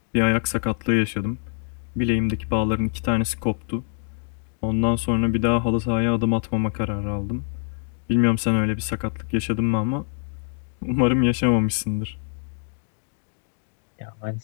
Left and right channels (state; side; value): silent; right; 62 dB below the other